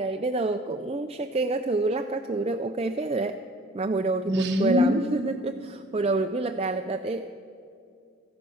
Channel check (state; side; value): normal; both; correlation 0.50